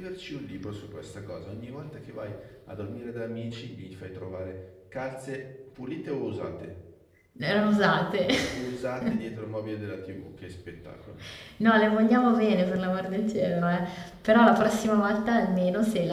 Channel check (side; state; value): both; identical; correlation 1.00